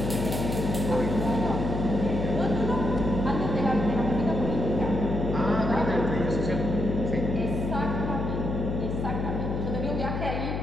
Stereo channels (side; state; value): left; noise; hum, 3 dB below the sound